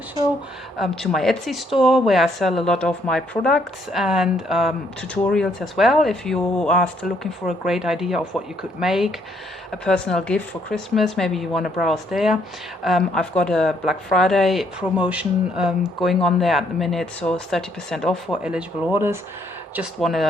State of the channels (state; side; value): normal; both; correlation 0.70